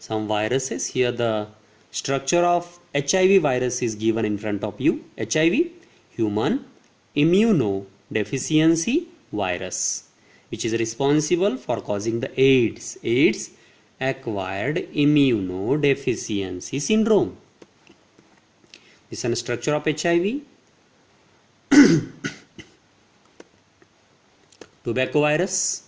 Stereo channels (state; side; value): identical; both; correlation 1.00